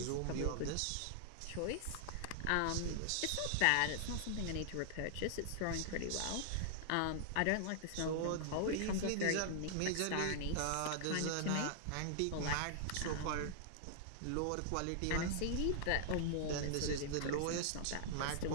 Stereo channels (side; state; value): both; different; correlation -0.01